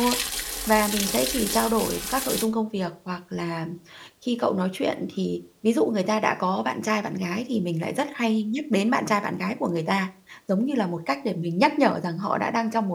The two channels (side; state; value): both; identical; correlation 1.00